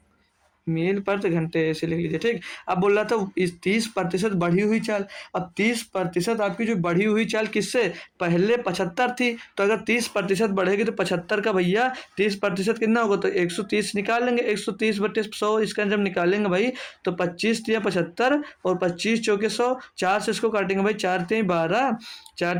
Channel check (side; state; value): both; identical; correlation 1.00